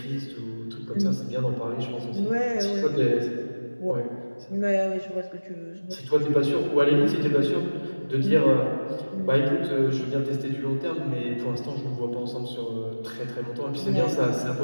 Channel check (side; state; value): both; inverted; correlation -1.00